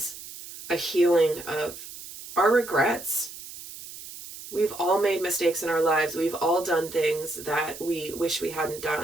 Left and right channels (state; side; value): noise; right; hiss, 13 dB below the sound